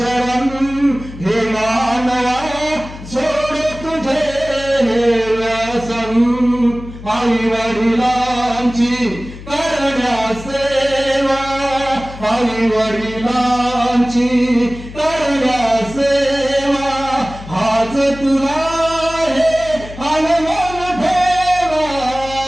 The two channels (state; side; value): noise; left; hum, 14 dB below the sound